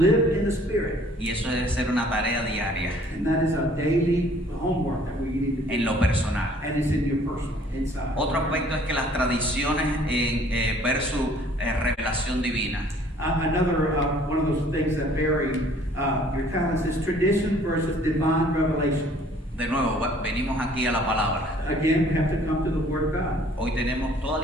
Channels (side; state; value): both; normal; correlation 0.56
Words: in the Spirit. Y eso debe ser una tarea diaria, And that is a daily homework that we need to do. en lo personal. And it's in your personal, inside. Otro aspecto es que las tradiciones versus revelación divina. Another one of those things that vary your talents is tradition versus divine revelation. De nuevo, venimos aquí a la palabra. Again, we have to come to the Word of God. Hoy tenemos toda la